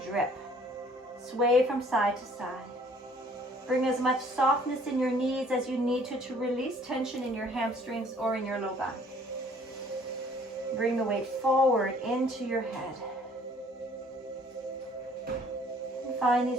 drip. Sway from side to side. Bring as much softness in your knees as you need to release tension in your hamstrings or in your low back. Bring the weight forward into your head. And find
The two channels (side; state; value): both; normal; correlation 0.57